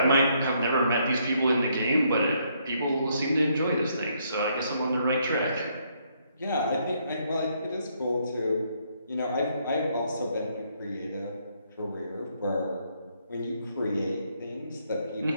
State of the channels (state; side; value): inverted; both; correlation -0.72